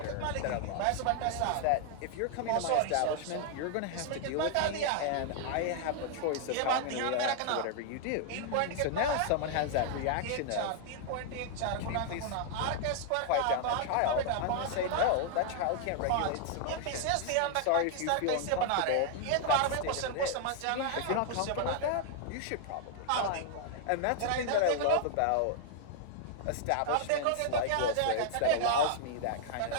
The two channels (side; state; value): both; different; correlation 0.00